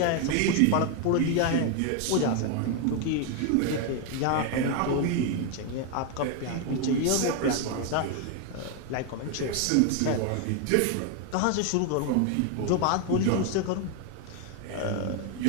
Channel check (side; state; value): both; different; correlation 0.01